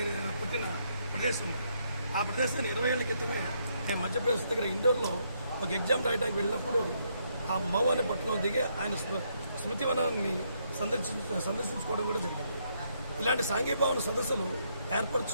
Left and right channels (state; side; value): inverted; both; correlation -0.75